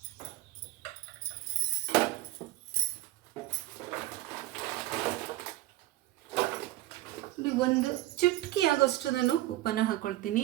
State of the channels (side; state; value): left; quieter; 16.3 dB